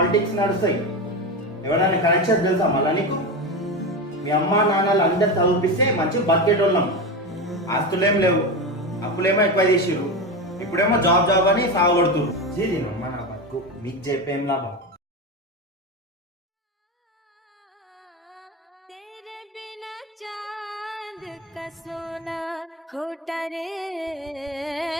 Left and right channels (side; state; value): both; normal; correlation 0.19